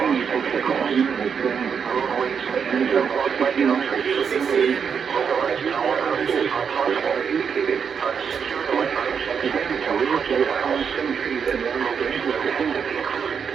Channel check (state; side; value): quieter; left; 6.8 dB